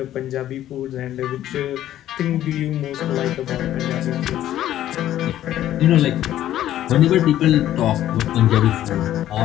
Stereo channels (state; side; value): quieter; right; 12.6 dB